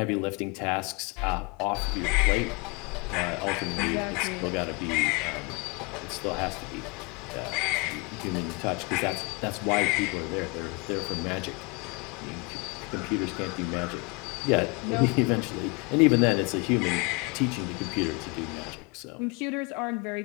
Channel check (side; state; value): right; quieter; 29.1 dB